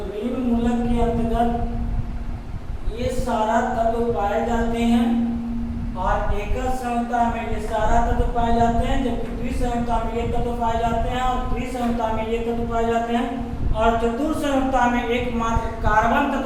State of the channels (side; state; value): both; identical; correlation 1.00